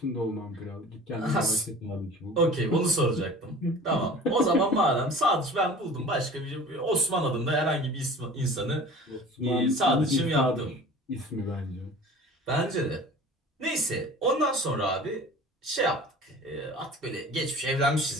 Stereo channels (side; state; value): both; normal; correlation 0.42